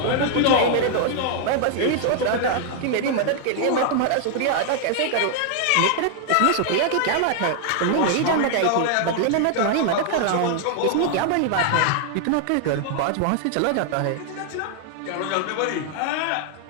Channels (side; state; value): both; different; correlation 0.00